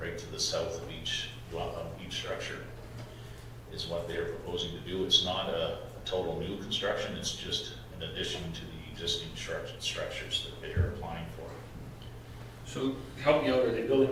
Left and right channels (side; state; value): both; identical; correlation 1.00